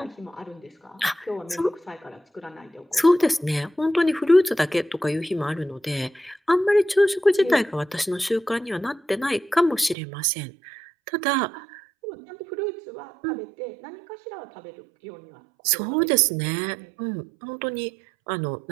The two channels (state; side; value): drops out; left; at 10.0 s